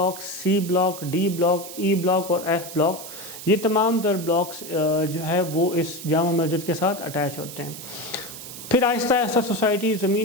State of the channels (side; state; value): right; noise; hiss, 12 dB below the sound